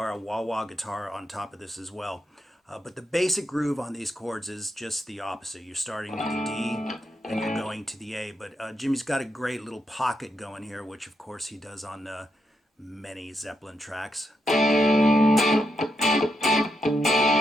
on top of this as well. But the basic groove on these chords is just the opposite. You're starting with the D, and you're going to the A. But Jimmy's got a great little pocket going here, which of course he does on many Zeppelin tracks.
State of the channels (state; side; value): normal; both; correlation 0.82